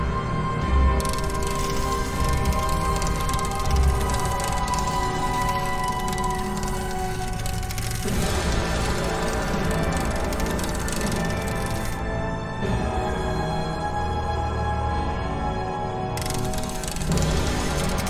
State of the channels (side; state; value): both; identical; correlation 1.00